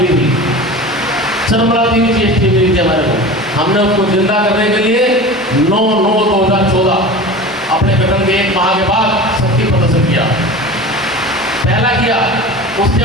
थी, चरमराती हुई GST मिली थी हमारे को, हमने उसको जिंदा करने के लिए 9/9/2014 अपने गठन के 1 माह के बाद शक्ति प्रदर्शन किया। पहला किया, उसके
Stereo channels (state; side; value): normal; both; correlation 0.34